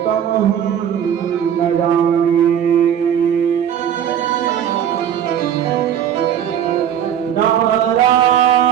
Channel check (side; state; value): left; quieter; 9.5 dB